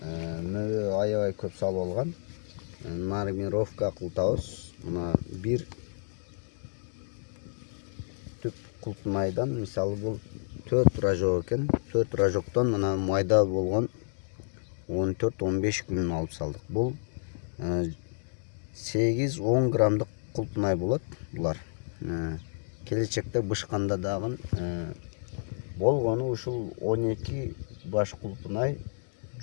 аябай көп салып алган. Нормировка кылтабыз. Мына бир түп култмайдан, мисалы бул 4 рожок екен. 4 рожоктон мына майда болгон 14-15 күн алып салдык. Бул 8-10 грамдык култмай болот булар. Келечекте бышканда дагы болгону ушул 12 баш култмай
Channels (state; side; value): silent; right; digital silence